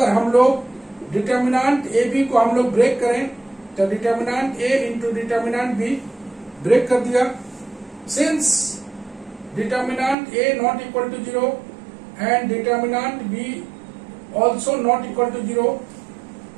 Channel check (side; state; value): left; drops out; at 10.2 s